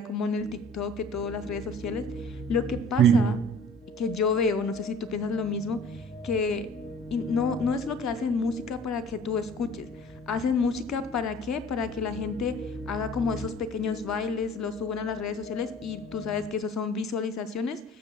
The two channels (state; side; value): normal; both; correlation 0.47